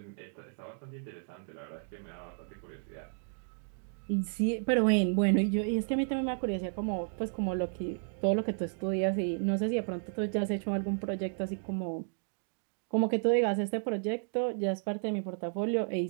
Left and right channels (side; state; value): left; silent; digital silence